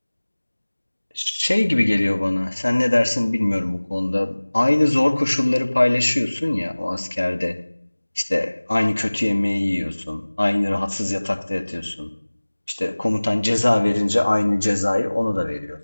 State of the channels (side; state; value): both; inverted; correlation -1.00